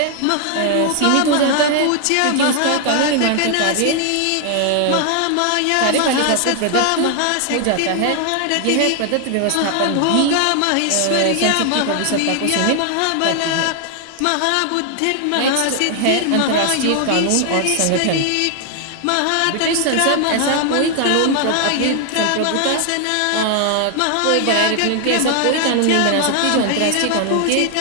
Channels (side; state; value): both; different; correlation 0.00